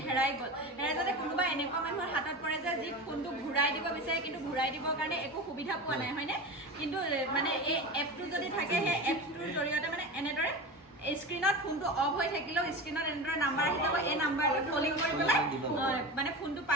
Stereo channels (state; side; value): normal; both; correlation 0.27